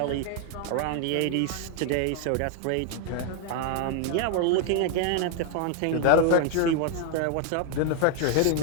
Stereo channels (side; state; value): both; different; correlation 0.01